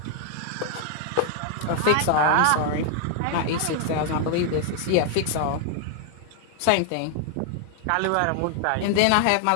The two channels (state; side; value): different; both; correlation 0.00